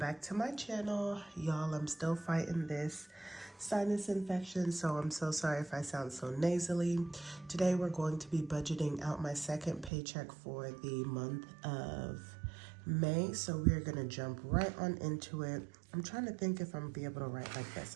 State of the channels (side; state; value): left; drops out; at 9.9 s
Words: to my channel. Y'all, I'm still fighting this sinus infection, so I'm so sorry if I sound so nasally. Today we're going to be budgeting out my second paycheck for the month of May, so we're gonna jump right on into it. I'm trying to think if I'm gonna be able to write like this.